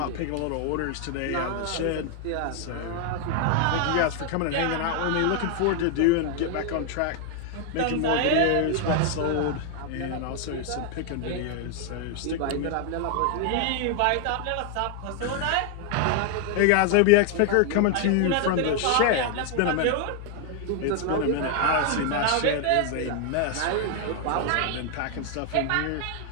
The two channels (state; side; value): different; both; correlation 0.00